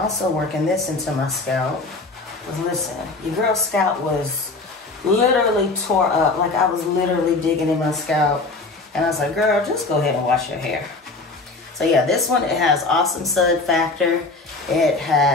working this into my scalp. Because listen, your girl's scalp was literally tore up. Like I was literally digging in my scalp. And I was like, girl, just go ahead and wash your hair. So yeah, this one, it has awesome sud factor. It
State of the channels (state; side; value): quieter; right; 3.4 dB